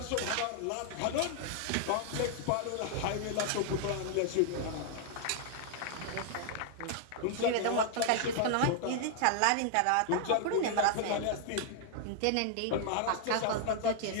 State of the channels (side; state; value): both; different; correlation 0.00